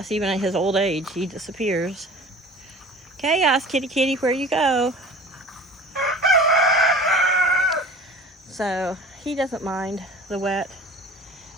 even at his old age, he disappears. Chaos, kitty kitty, where you go? So, he doesn't mind the wet.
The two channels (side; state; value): both; normal; correlation 0.42